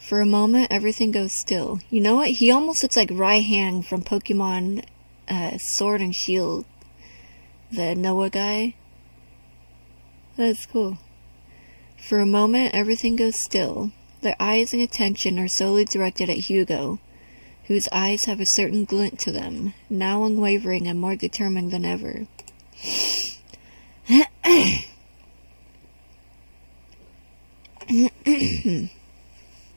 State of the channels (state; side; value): inverted; both; correlation -1.00